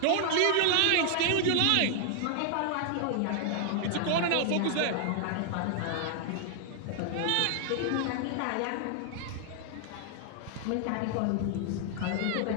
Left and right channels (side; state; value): both; different; correlation 0.00